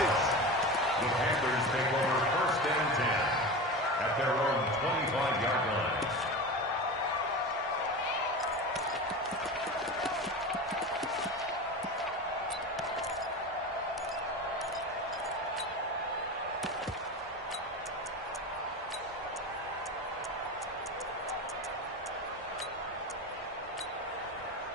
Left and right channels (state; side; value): normal; both; correlation 0.27